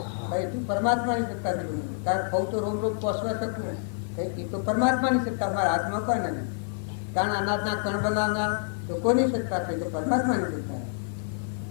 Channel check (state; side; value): silent; right; digital silence